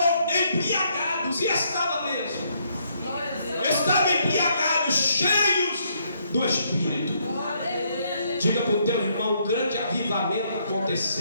embriagados. E estava mesmo. Estavam embriagados, cheios do Espírito. Diga para o teu irmão: um grande avivamento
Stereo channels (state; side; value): inverted; both; correlation -0.72